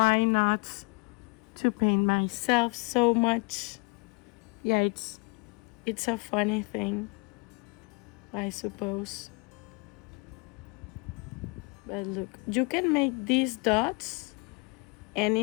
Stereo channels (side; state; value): right; quieter; 30.3 dB